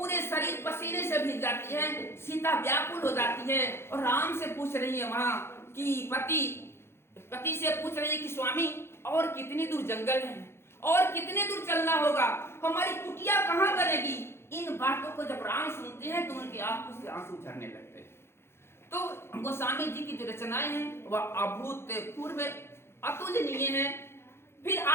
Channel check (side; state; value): right; late; 0.12 ms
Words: शरीर पसीने से भीग जाती है। सीता व्याकुल हो जाती है और राम से पूछ रही है वहां कि पति से पूछ रही है कि स्वामी और कितनी दूर जंगल है और कितने दूर चलना होगा, हमारी कुटिया कहाँ बनेगी। इन बातों को जब राम सुनते हैं तो उनकी आंखों से आंसू झरने लगते हैं। तो गोस्वामी जी की जो रचनाएं हैं वह अभूतपूर्व अतुलनीय है। फिर